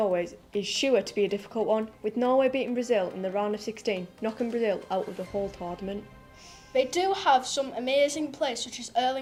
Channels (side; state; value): both; identical; correlation 1.00